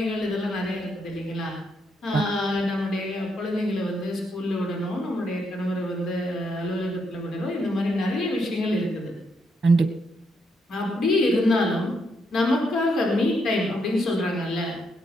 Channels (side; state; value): both; normal; correlation 0.77